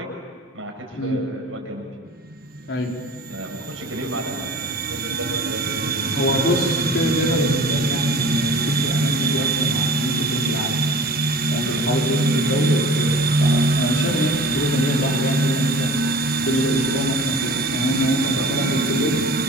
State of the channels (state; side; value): normal; both; correlation 0.42